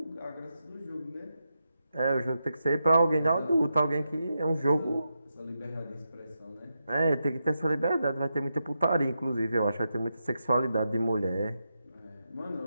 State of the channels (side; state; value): both; inverted; correlation -0.86